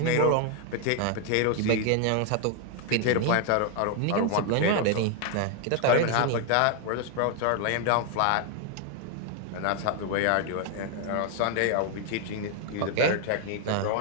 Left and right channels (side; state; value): both; different; correlation 0.00